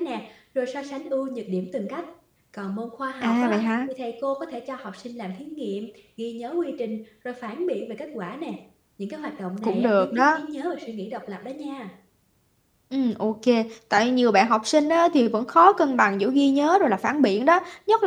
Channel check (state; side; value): identical; both; correlation 1.00